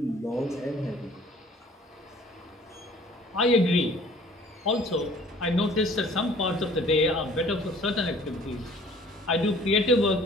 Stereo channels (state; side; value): normal; both; correlation 0.53